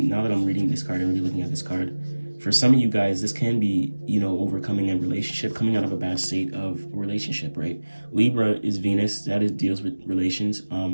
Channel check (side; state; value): both; inverted; correlation -1.00